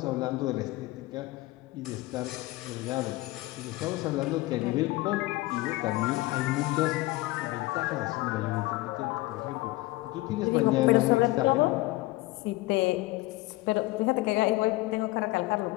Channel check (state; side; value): quieter; right; 20.0 dB